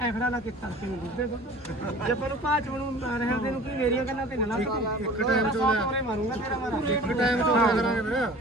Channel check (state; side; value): normal; both; correlation 0.44